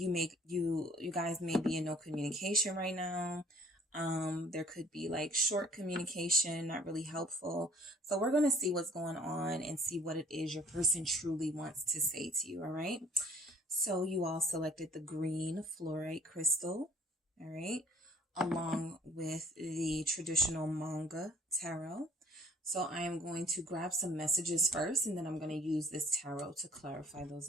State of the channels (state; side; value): normal; both; correlation 0.56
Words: guys may be in no communication right now. There could be like short communication, not really helpful. So we're going to see what's going on and see what it is your person truly wants to say to you. All right. So you all selected the green fluorite crystal. All right. Along with the traditional manga tarot. So I am going to grab some messages first, and then I'm going to use this tarot to clarify those